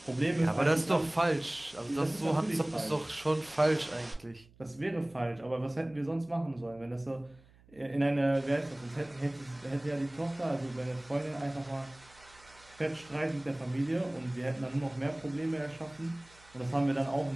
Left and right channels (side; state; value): right; noise; hum, 26 dB below the sound